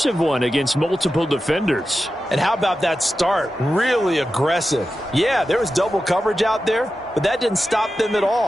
one against multiple defenders. And how about that start? Really aggressive. Yeah, there was double coverage out there, but that didn't stop them at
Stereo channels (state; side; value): normal; both; correlation 0.92